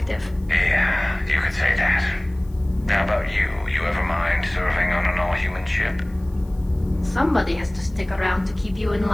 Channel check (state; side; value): noise; left; hiss, 30 dB below the sound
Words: Yeah, you could say that. How about you? You ever mind serving on an all-human ship? Somebody has to stick around to keep you in